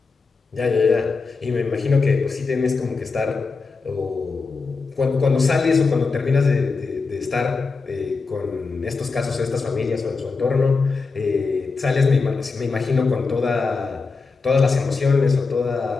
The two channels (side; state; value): right; quieter; 4.4 dB